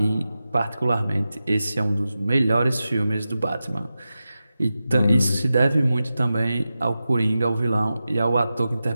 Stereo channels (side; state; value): both; inverted; correlation -0.93